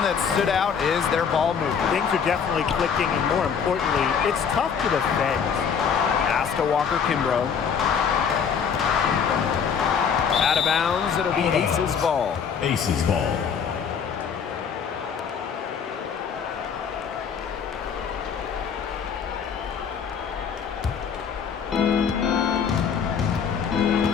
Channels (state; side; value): quieter; right; 6.9 dB